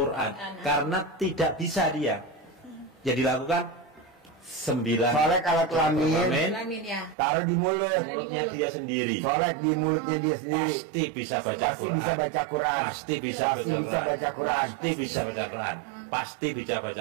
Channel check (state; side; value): drops out; left; at 7.2 s